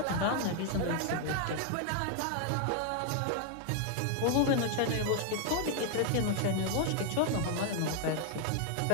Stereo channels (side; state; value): both; different; correlation 0.00